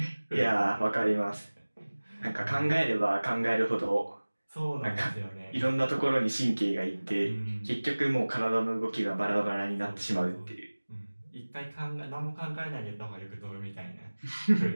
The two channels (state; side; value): inverted; both; correlation -1.00